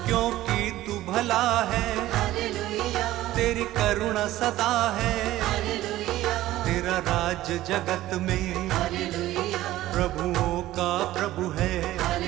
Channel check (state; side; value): quieter; left; 15.3 dB